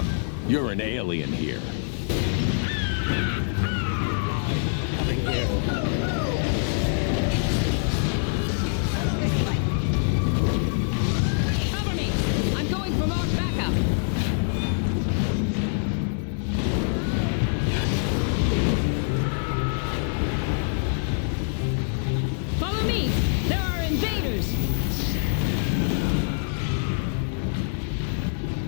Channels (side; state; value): right; silent; digital silence